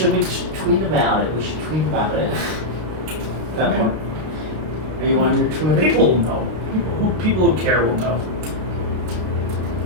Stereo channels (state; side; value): late; left; 32 ms